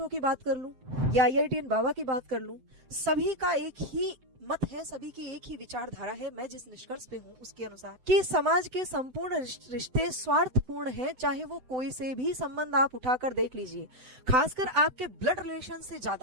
की बात कर लूं, या आईआईटीएन बाबा की बात कर लूं, सभी का एक ही मत है, सभी की एक ही विचारधारा है। मैं जिस निष्कर्ष पे हूँ उसके अनुसार कि समाज के संपूर्ण रिश्ते स्वार्थपूर्ण हैं, चाहे वो कोई से भी संबंध आप उठाकर देख लीजिए, खासकर आपके ब्लड रिलेशन से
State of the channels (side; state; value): left; late; 7.9 ms